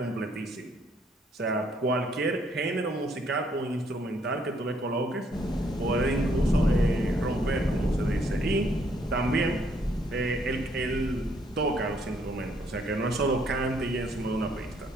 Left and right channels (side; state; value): both; normal; correlation 0.69